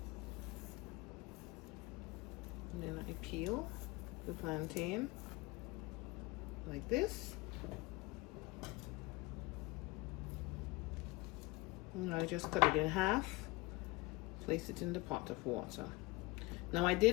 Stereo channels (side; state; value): right; quieter; 22.4 dB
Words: And then I peel the plantain like this. And I just cut it in half, place it in the pot of water. Now I